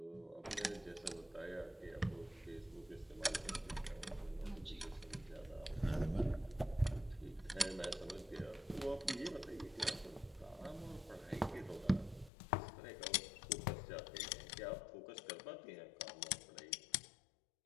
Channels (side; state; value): right; drops out; at 12.3 s